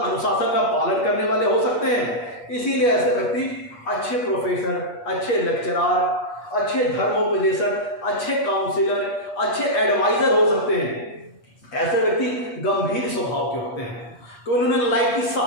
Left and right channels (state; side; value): late; right; 8.4 ms